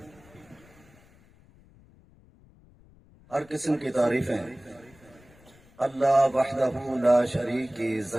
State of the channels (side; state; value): left; noise; rumble, 27 dB below the sound